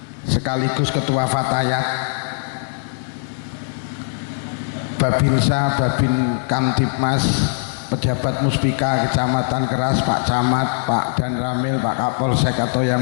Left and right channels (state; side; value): silent; right; digital silence